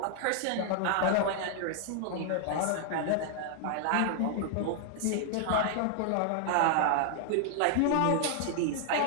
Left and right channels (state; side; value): different; both; correlation 0.00